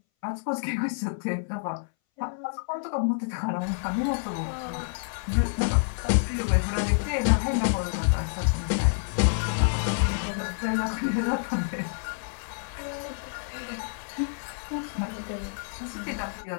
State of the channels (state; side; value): silent; right; 59 dB below the other